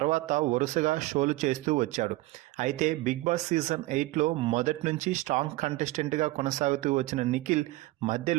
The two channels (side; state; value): left; quieter; 19.2 dB